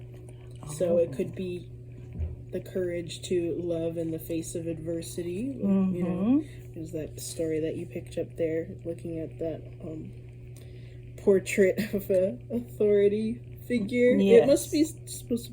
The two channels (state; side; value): identical; both; correlation 1.00